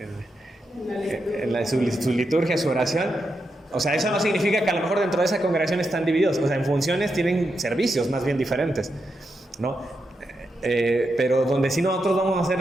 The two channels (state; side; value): normal; both; correlation 0.85